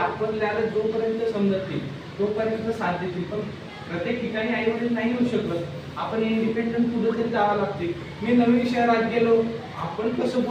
जोपर्यंत समजत नाही तोपर्यंत साथ देतील, पण प्रत्येक ठिकाणी आई वडील नाही येऊ शकत. आपण इंडिपेंडंट कुठं तरी जावं लागते. मी नवीन शहरात गेलो, आपण कसं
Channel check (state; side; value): identical; both; correlation 1.00